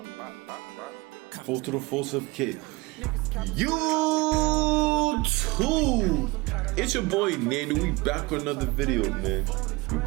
Full to the full certificate. YouTube! It's your boy Nando. We back with another video, man. We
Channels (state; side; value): quieter; left; 23.1 dB